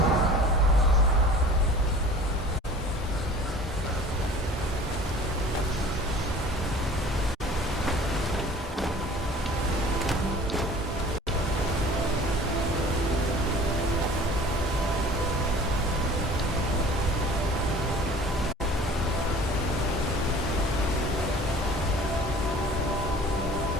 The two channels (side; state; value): both; normal; correlation 0.45